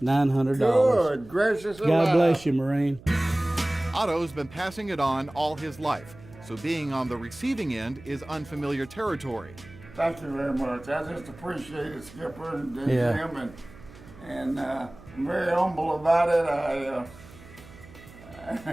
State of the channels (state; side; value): noise; right; hum, 20 dB below the sound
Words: $900. Good gracious God alive. bless you, Marine. Otto's been passing it on all his life, so being on the receiving end is unfamiliar territory. Thank you very much. I just appreciate it, Skipper and Yeah. Jim, and I'm very humble about it.